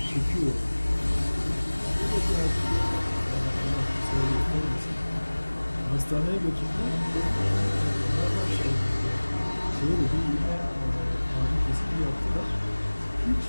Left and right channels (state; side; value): inverted; both; correlation -1.00